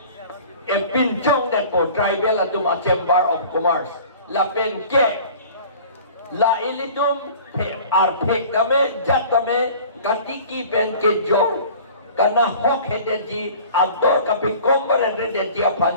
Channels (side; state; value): both; inverted; correlation -0.45